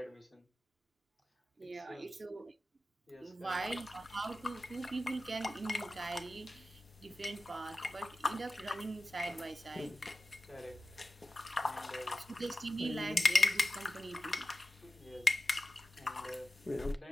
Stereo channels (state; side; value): normal; both; correlation 0.93